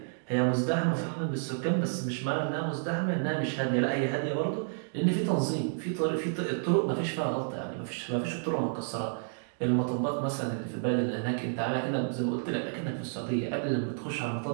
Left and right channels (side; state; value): left; silent; digital silence